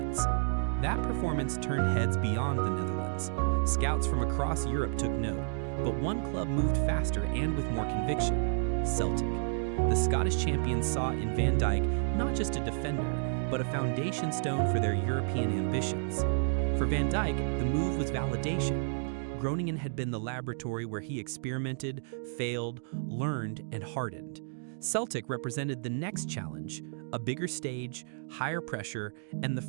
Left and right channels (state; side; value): silent; left; digital silence